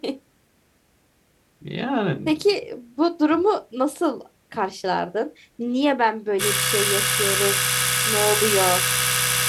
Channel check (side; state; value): both; identical; correlation 1.00